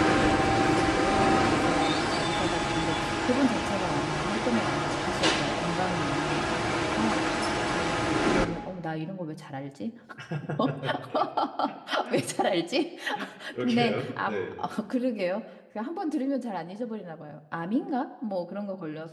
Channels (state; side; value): identical; both; correlation 1.00